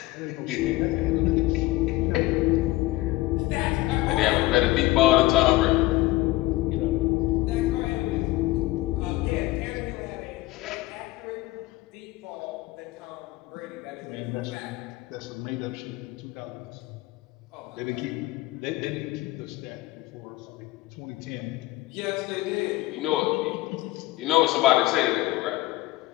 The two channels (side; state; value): right; quieter; 18.8 dB